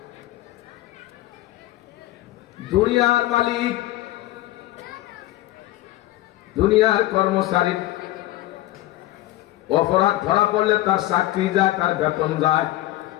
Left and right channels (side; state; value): right; quieter; 16.0 dB